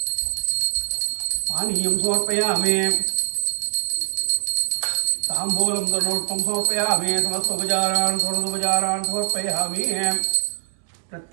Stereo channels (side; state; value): left; silent; digital silence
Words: पानीयं समर्पयामि ताम्बूलं तनोष्टं समर्पयामि समस्तोपचारान् षोडशोपचारान् समर्पयामि